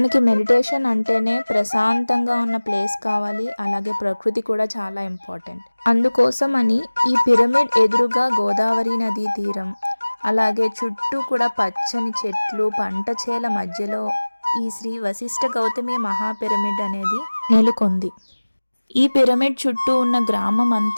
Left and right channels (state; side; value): inverted; both; correlation -1.00